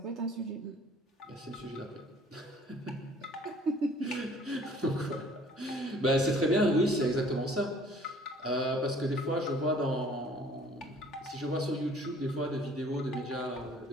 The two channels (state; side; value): normal; both; correlation 0.54